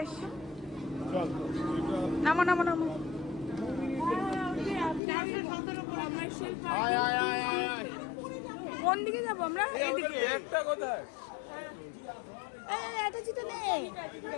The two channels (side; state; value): right; drops out; at 5.0 s